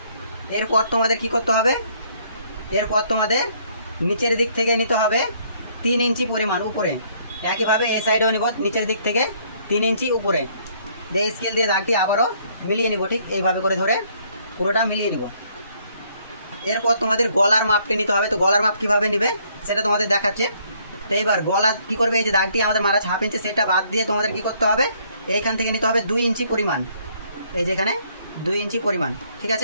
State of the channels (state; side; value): inverted; both; correlation -0.66